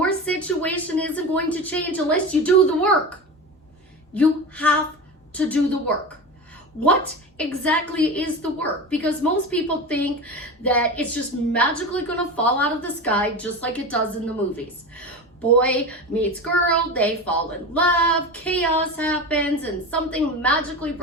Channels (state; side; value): normal; both; correlation 0.26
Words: situation isn't going to change unless you do the work. You have to do the work. What exactly is the work? Because most people think that it's just magically going to fall out of the sky just like it does in the movies. Boy meets girl, they fall in love, chaos happens, and something magically